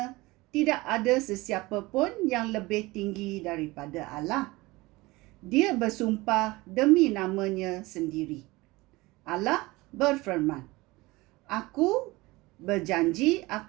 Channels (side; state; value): left; quieter; 21.5 dB